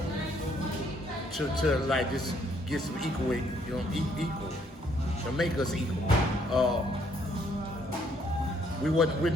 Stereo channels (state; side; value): normal; both; correlation 0.68